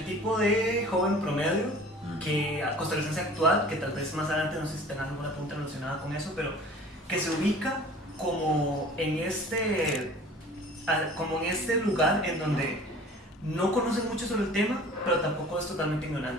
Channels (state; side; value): normal; both; correlation 0.45